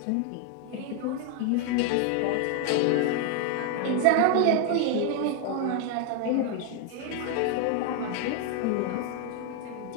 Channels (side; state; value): both; different; correlation 0.00